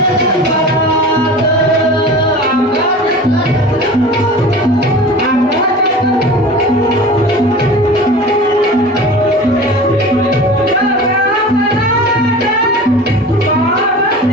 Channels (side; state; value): both; normal; correlation 0.36